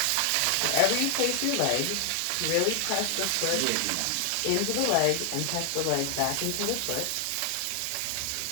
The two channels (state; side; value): different; both; correlation 0.00